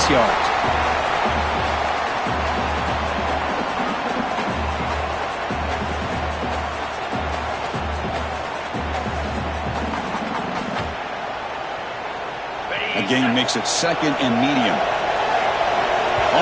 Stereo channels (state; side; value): identical; both; correlation 1.00